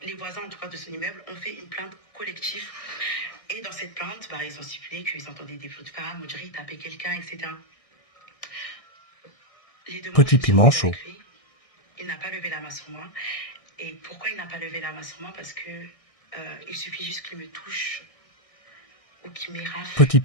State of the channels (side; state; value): right; late; 1.6 ms